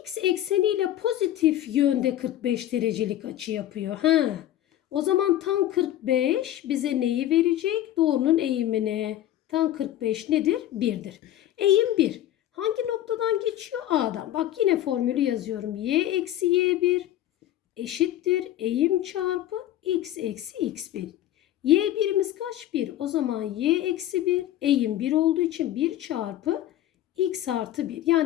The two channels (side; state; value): right; quieter; 12.8 dB